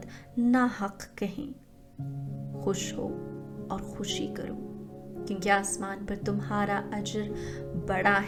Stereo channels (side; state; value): both; identical; correlation 1.00